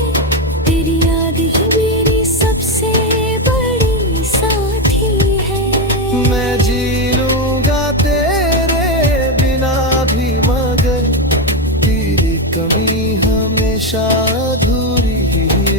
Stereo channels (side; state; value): both; normal; correlation 0.09